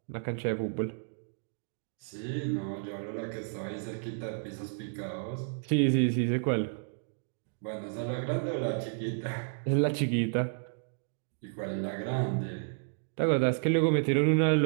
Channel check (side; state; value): left; silent; digital silence